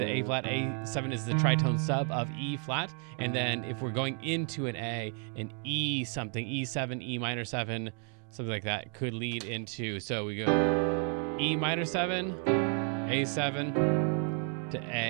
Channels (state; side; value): quieter; left; 39.9 dB